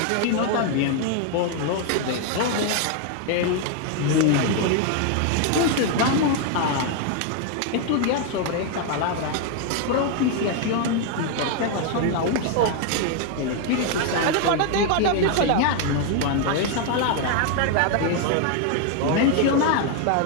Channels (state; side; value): different; both; correlation 0.00